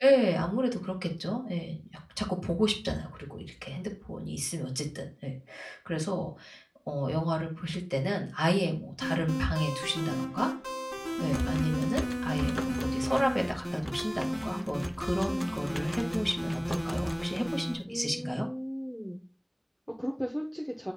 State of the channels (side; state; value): both; identical; correlation 1.00